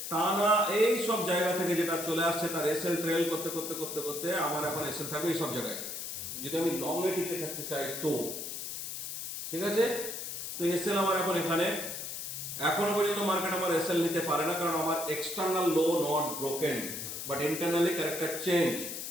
টানা এই সব জায়গা থেকে যেটা চলে আসছে, তার এসএল ট্রেল করতে করতে করতে করতে আমার এখন এসএল থাকবে এই সব জায়গায়, যদি আমি লং এ টিকে থাকতে চাই তো। ঠিক আছে? তো এসএল আমার এখন এখানে। এখনো পর্যন্ত মার্কেট আমার এসএল নিতে পারে না, কারণ আমার external low not broken, but internally character change.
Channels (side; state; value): left; noise; hiss, 6 dB below the sound